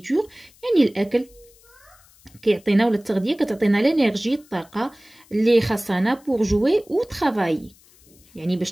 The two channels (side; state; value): left; noise; hiss, 28 dB below the sound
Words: يعني الاكل كيعطينا، ولا التغذيه كتعطينا لينيرجي، الطاقه اللي خاصنا pour jouer ou travailler، يعني